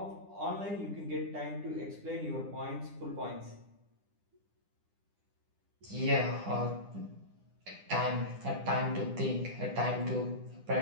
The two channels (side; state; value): left; late; 9.9 ms